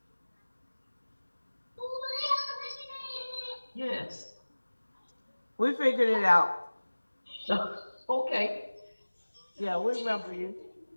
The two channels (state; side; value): inverted; both; correlation -1.00